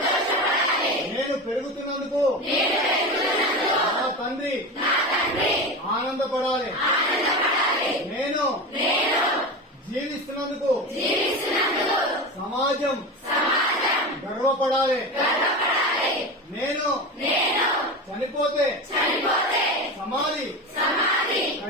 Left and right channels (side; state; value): both; normal; correlation 0.24